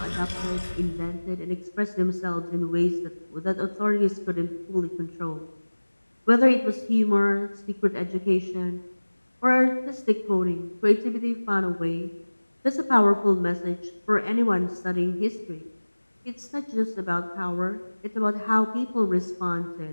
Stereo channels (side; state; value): both; inverted; correlation -1.00